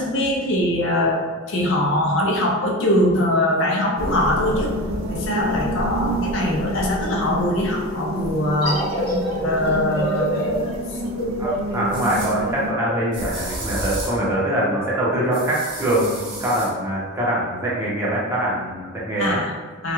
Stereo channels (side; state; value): both; normal; correlation 0.25